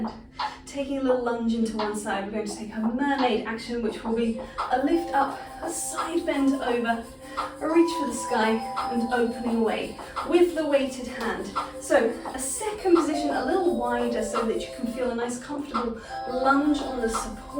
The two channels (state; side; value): identical; both; correlation 1.00